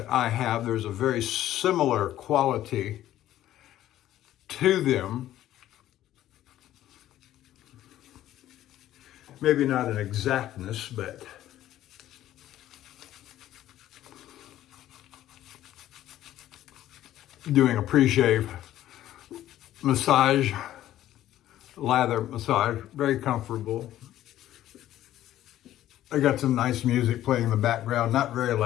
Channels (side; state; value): right; quieter; 13.1 dB